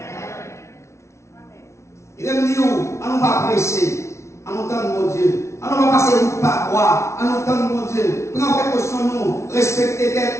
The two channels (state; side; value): late; right; 0.13 ms